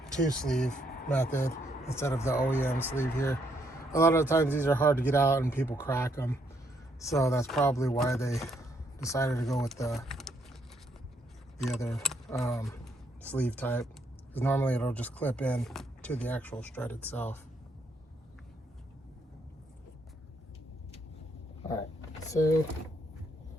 two sleeve method instead of the OEM sleeve here. A lot of the times these are hard to get out and people crack them, so that's probably why they decided to go with the other sleeve type, because normally it'll just clip in to the actual strut itself. All right, so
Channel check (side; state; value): both; normal; correlation 0.73